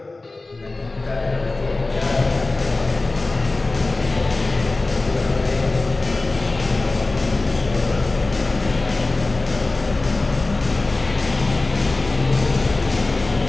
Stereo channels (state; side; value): quieter; right; 3.2 dB